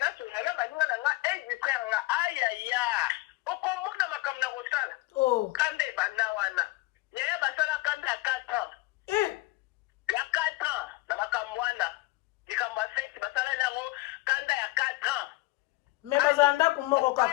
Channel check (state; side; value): quieter; right; 20.1 dB